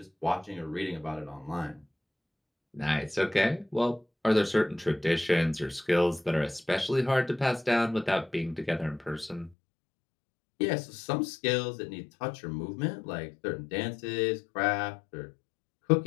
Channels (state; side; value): drops out; right; at 9.6 s